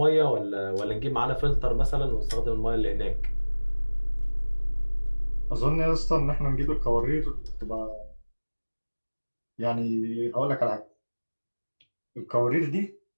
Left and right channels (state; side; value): inverted; both; correlation -1.00